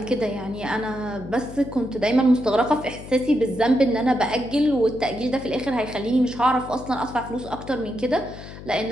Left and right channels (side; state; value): left; noise; hum, 14 dB below the sound